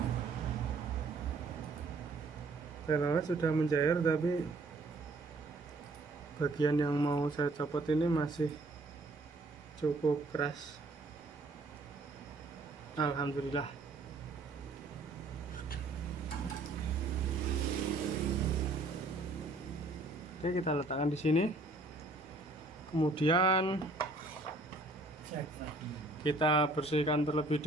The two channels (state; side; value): quieter; left; 3.2 dB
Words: Telolet sudah mencair, tapi bagian yang mau saya copot ini masih cukup keras. Alhamdulillah. Oke, kita letakkan di sini. Kemudian kita bersihkan terlebih